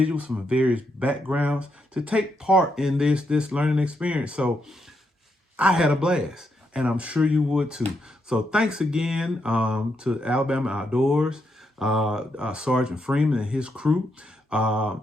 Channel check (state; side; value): normal; both; correlation 0.80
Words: from various backgrounds to take part in this learning experience. So I had a blast, and I'm sure you would too. So thanks again to Alabama Outdoors, Sergeant Freeman and his crew